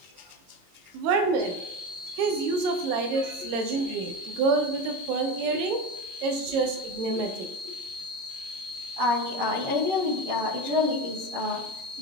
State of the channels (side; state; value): left; late; 22 ms